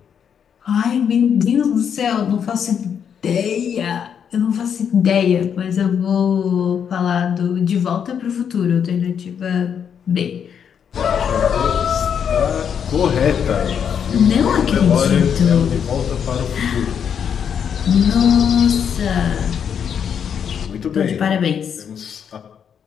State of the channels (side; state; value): right; quieter; 7.8 dB